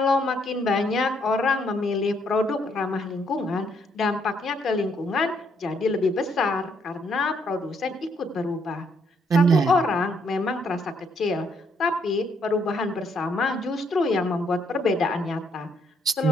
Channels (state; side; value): normal; both; correlation 0.71